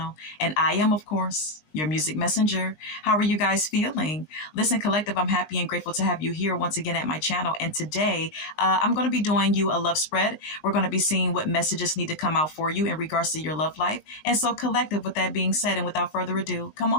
And I am, of course, your music messenger. How are you guys feeling? Listen, collective, I'm happy and grateful to have you here once again at my channel. And today, I'm going to be doing you a love spread. We're going to be seeing what messages need to come out for you in regards to your love life. And so, collective, with that being said, and without further ado, come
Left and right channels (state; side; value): late; right; 19 ms